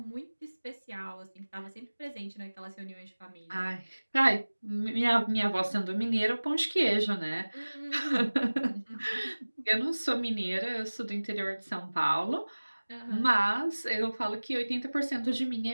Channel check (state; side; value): inverted; both; correlation -1.00